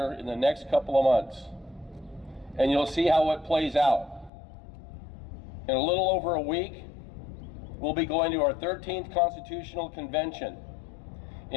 in the next couple of months. And you'll see how it plays out. In a little over a week, we'll be going to our 13th Constitutional Convention,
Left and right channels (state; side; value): drops out; right; at 4.3 s